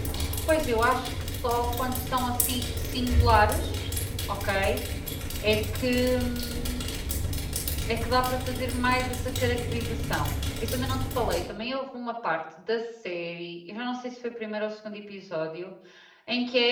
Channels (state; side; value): identical; both; correlation 1.00